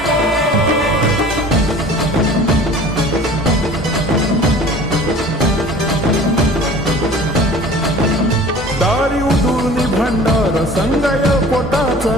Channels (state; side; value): normal; both; correlation 0.44